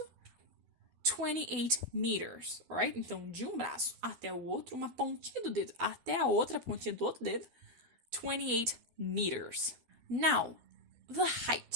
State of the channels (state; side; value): late; left; 12 ms